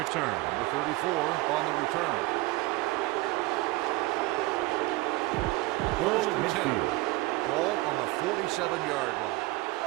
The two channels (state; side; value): quieter; left; 21.1 dB